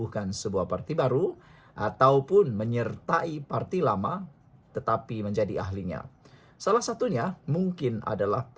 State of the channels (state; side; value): identical; both; correlation 1.00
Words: sebuah parti baru ataupun menyertai parti lama tetapi menjadi ahlinya. Salah satunya mungkin adalah